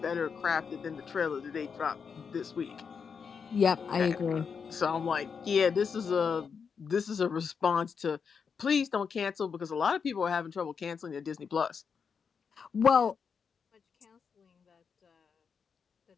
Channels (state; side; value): quieter; right; 6.1 dB